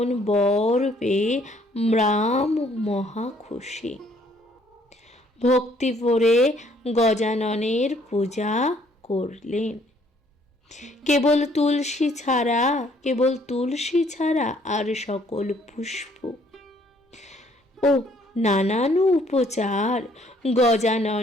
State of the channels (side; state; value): both; normal; correlation 0.63